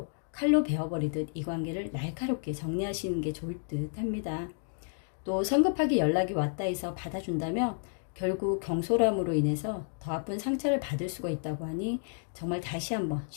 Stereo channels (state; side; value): silent; right; digital silence